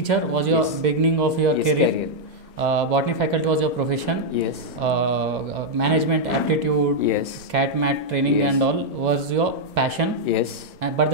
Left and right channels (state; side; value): normal; both; correlation -0.04